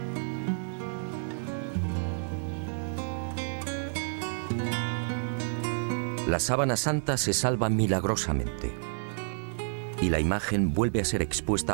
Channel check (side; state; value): left; silent; digital silence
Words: La sábana santa se salva milagrosamente y la imagen vuelve a ser